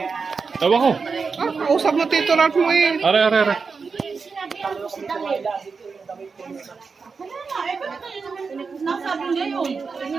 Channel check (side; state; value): left; quieter; 5.0 dB